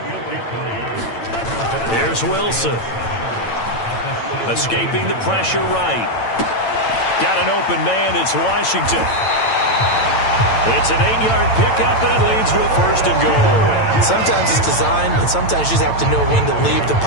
Here's Wilson. Escaping the pressure right. Got an open man. It's Washington. It's an 8-yard pickup, and it leads to a first and goal. Sometimes it's designed, and sometimes you just have to know when to leave the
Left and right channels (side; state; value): right; late; 8.9 ms